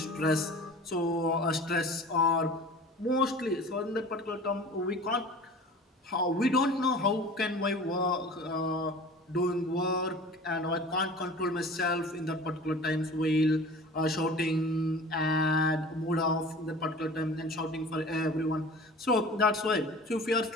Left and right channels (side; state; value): both; normal; correlation 0.41